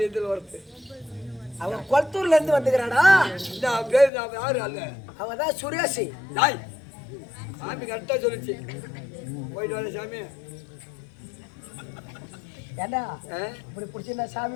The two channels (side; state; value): right; drops out; at 4.1 s